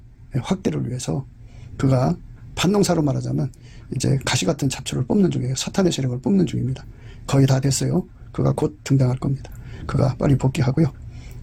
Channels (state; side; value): identical; both; correlation 1.00